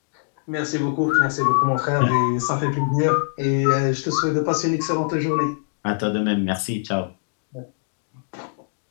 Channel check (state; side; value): silent; right; digital silence